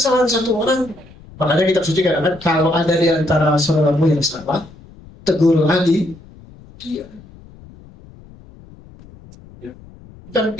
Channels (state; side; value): noise; left; rumble, 22 dB below the sound